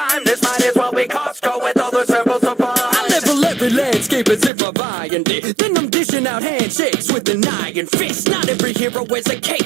This might as well be Costco with all the samples supplies. I level every landscape as if I'm buying it. Then I'm dishing out handshakes with an iron fist. Not every hero wears a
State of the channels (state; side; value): drops out; left; at 4.5 s